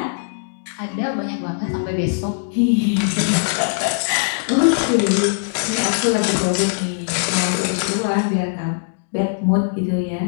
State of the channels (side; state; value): right; silent; digital silence